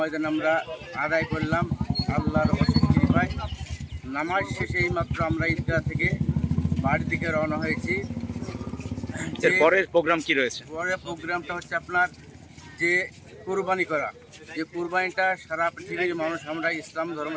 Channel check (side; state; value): both; identical; correlation 1.00